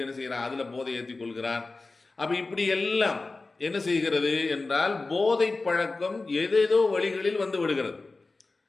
என்ன செய்கிறான், அதில் போதை ஏற்றி கொள்கிறான். அப்போ இப்படி எல்லாம் என்ன செய்கிறது என்றால் போதை பழக்கம் ஏதேதோ வழிகளில் விடுகிறது.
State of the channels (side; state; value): right; quieter; 3.5 dB